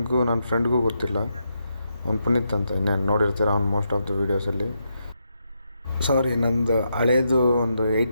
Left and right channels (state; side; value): inverted; both; correlation -0.82